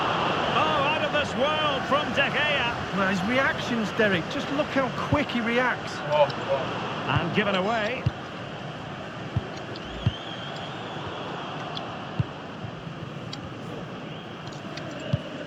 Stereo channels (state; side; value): identical; both; correlation 1.00